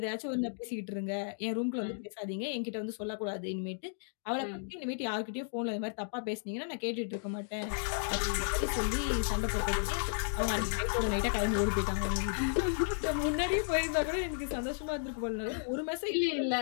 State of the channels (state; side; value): silent; right; digital silence